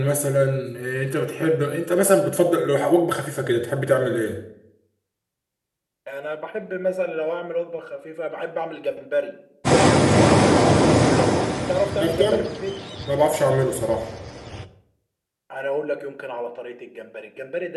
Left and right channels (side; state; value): both; identical; correlation 1.00